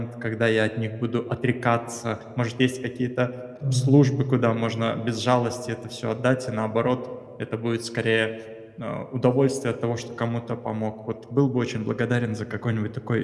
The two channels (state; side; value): identical; both; correlation 1.00